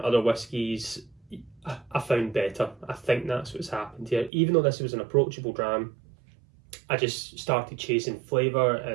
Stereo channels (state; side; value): drops out; left; at 4.3 s